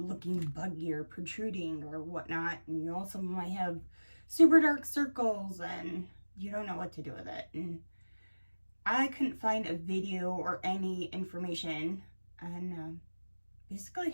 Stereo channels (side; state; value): both; inverted; correlation -1.00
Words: buggy or protruding or whatnot. And you also might have super dark circles and you don't know what to do with it. And I couldn't find a video or any information on basically